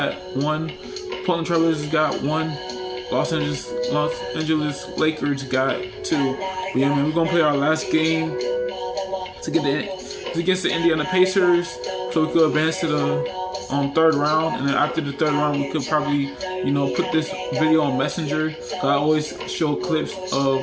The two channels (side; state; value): both; identical; correlation 1.00